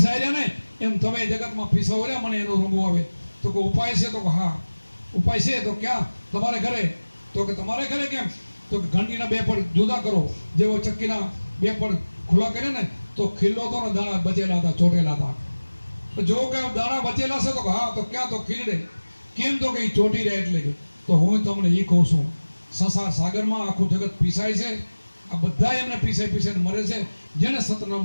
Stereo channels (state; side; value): inverted; both; correlation -1.00